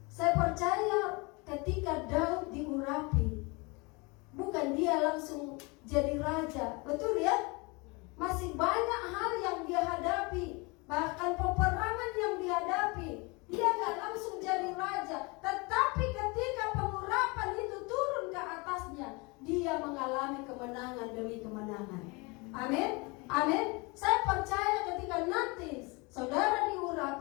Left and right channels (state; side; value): quieter; right; 27.7 dB